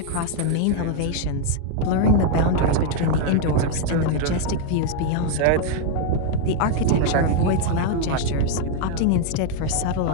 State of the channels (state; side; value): different; both; correlation 0.00